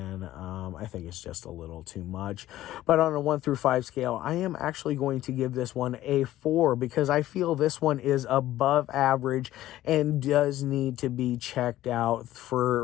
I think it's just a little too much. But on a 1 through 5 scale, I am actually going to give this one a 4, because I feel this one is above average and does need to be checked out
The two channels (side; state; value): right; quieter; 14.4 dB